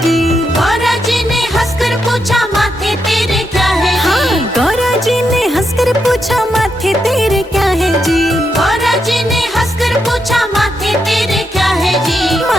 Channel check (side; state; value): both; normal; correlation 0.82